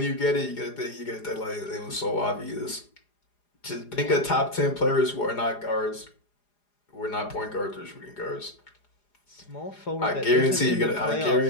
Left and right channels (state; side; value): late; right; 4.9 ms